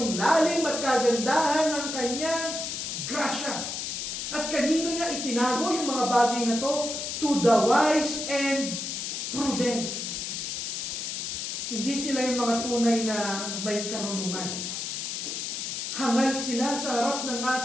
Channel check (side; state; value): left; noise; hiss, 4 dB below the sound